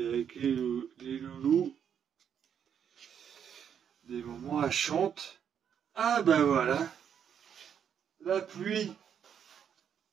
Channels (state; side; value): quieter; left; 8.3 dB